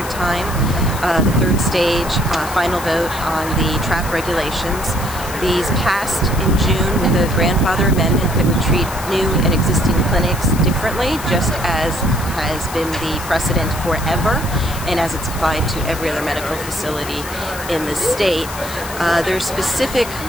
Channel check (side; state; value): left; noise; hiss, 12 dB below the sound